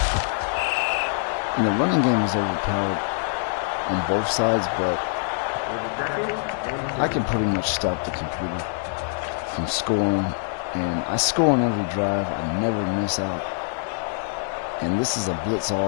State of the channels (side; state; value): right; silent; digital silence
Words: And the running game is overpowered on both sides, but I can pretty much stop the computer from scoring. And I score on every drive. I never miss out. And this is a blitz